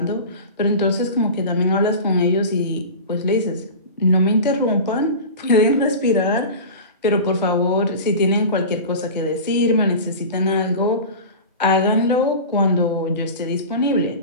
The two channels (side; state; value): both; inverted; correlation -0.31